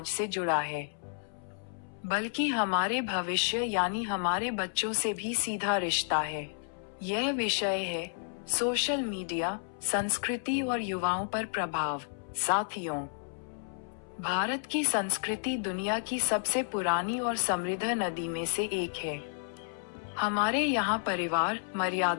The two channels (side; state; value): right; silent; 57 dB below the other